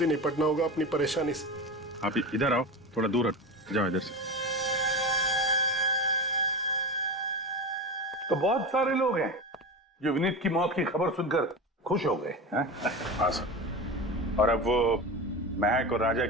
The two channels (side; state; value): both; normal; correlation 0.25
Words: ही निपटना होगा अपनी परेशानी से। आप इधर आओ, थोड़ा दूर हट जाओ इधर से। तो बहुत सारे लोग हैं जो विनीत की मौत की खबर सुनकर खुश हो गए हैं। हाँ सर, और अब वो महक और राजा